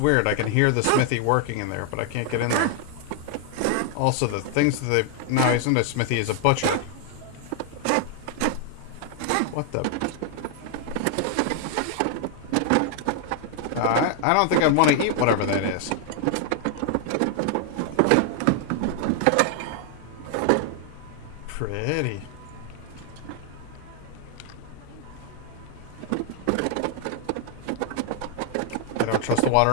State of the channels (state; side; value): different; both; correlation 0.00